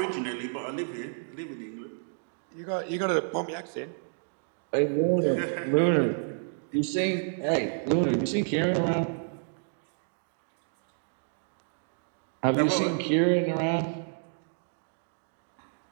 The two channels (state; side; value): silent; left; digital silence